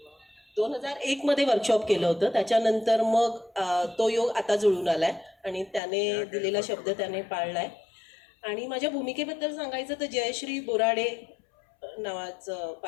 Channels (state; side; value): drops out; right; at 5.8 s